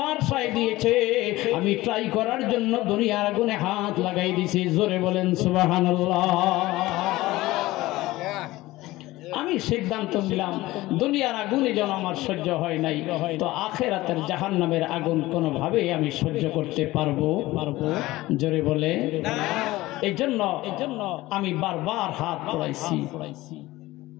সায় দিয়েছে, আমি ট্রাই করার জন্য দুনিয়ার আগুনে হাত লাগাই দিছি। জোরে বলেন সুবহানাল্লাহ। আমি সিদ্ধান্ত নিলাম, দুনিয়ার আগুনে যেন আমার সহ্য হয় নাই, তো আখিরাতের জাহান্নামের আগুন কোনোভাবেই আমি সহ্য করতে পারবো। জোরে বলে। এই জন্য আমি বারবার হাত পড়াইছি।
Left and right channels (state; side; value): quieter; right; 18.3 dB